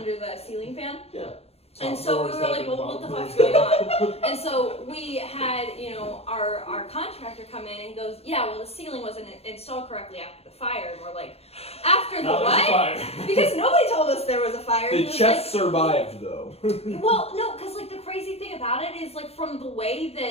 the ceiling fan. Yeah. And so we were like, well, what the fuck's going on? And so we had, our contractor come in and he goes, yeah, well, the ceiling wasn't installed correctly after the fire. And we're like, after the No, there's a what? fire. Because nobody told us there was a fire. The He was chest survived though. well, no, because like the crazy thing about it is like from the way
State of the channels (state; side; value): late; right; 0.29 ms